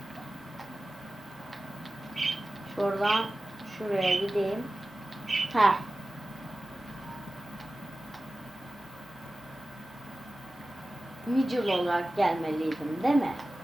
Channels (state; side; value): normal; both; correlation 0.96